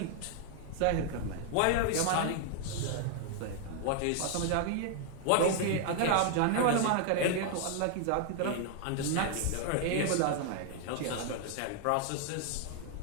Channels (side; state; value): both; different; correlation 0.00